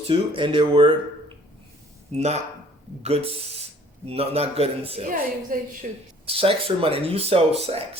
two, and they were not good, not good in sales. Yeah, they should. Sex or money, and you sell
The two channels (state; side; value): normal; both; correlation 0.55